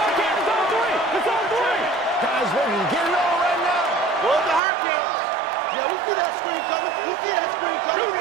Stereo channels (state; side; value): drops out; left; at 4.6 s